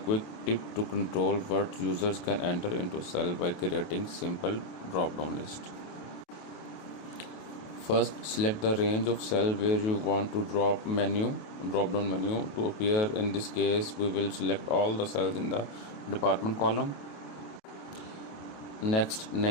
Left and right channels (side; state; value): right; late; 28 ms